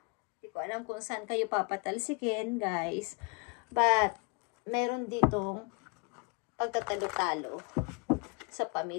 Hindi ko alam kung saan kayo papatalsikin, guys. But, meron ditong pagtatalo-talo sa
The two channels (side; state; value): right; quieter; 32.3 dB